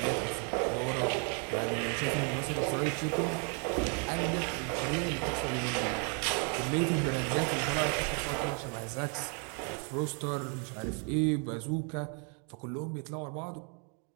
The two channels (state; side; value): quieter; left; 38.5 dB